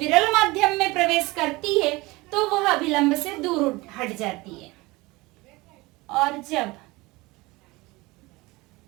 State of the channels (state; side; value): quieter; left; 22.2 dB